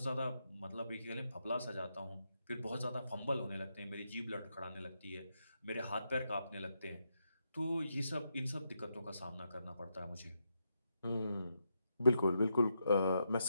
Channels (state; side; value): inverted; both; correlation -0.83